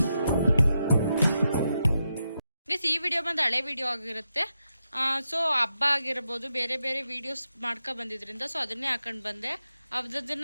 ಈ ವಿಡಿಯೋ ಬಂದು ಹಳೆ ವಿಡಿಯೋ ಆಗಿರುತ್ತೆ. ಸೊ ಹಬ್ಬ ಆಗಿರ್ಬೋದು, ಬೇರೆ ಬೇರೆ ವಿಡಿಯೋಸ್ ಮಾಡ್ಕೊ ಬಂದಿದ್ರಿಂದ ಸೊ ಅದನ್ನೇ ಹಾಕೊಂಡು ಬಂದೆ.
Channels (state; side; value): inverted; both; correlation -0.86